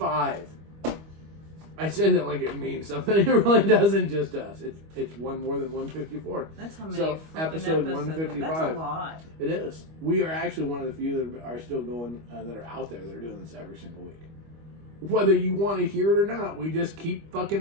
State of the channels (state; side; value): late; left; 25 ms